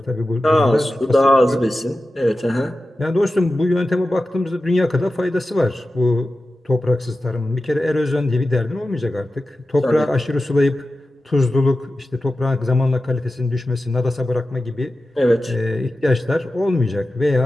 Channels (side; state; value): both; normal; correlation 0.93